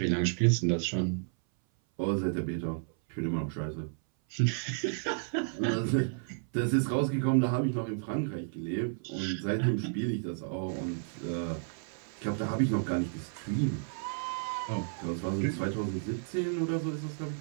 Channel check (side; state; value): left; silent; 56 dB below the other